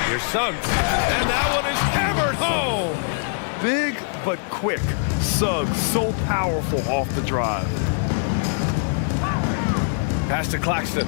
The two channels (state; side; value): silent; right; 64 dB below the other